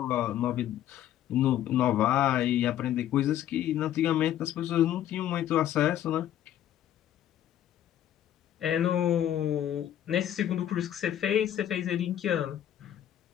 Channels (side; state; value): right; quieter; 11.4 dB